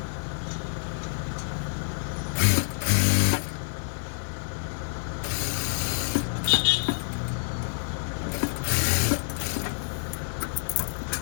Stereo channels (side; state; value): right; silent; digital silence